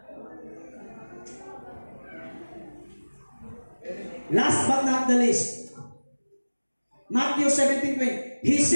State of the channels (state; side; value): inverted; both; correlation -1.00